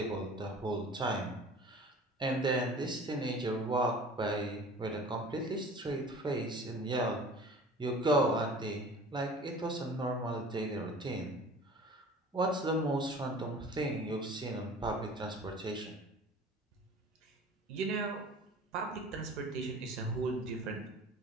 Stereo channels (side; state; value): both; normal; correlation 0.44